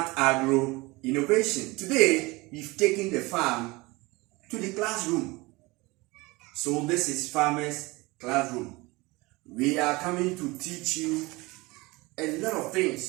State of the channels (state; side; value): quieter; left; 23.2 dB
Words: Agro Innovation. Today, we've taken the farm to the classroom. So this is Farmer's Classroom. We are coming to teach you a lot of